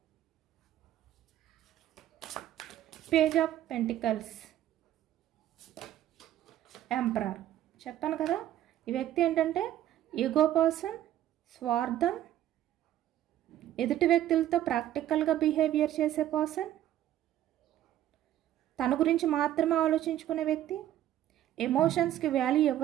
Page of pentacles, emperor. చెప్పాను కదా, ఈ వ్యక్తి ఏంటంటే ఈగో పర్సన్, స్వార్థం, ఎదుటి వ్యక్తులతో ప్రాక్టికల్గా బిహేవియర్ చేసే పర్సన్, తన గురించి మాత్రమే ఆలోచించుకునే వ్యక్తి, ఎమోషన్స్కి వాల్యూ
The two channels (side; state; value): left; quieter; 12.4 dB